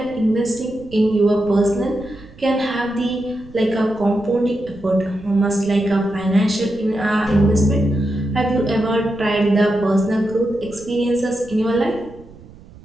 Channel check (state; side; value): noise; right; rumble, 21 dB below the sound